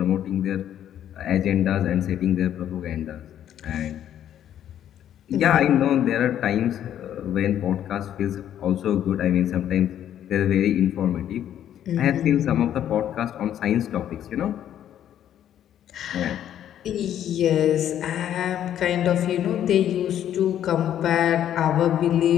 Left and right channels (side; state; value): right; quieter; 10.7 dB